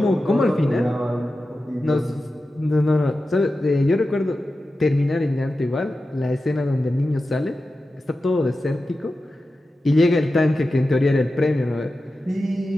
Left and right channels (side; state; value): both; normal; correlation 0.93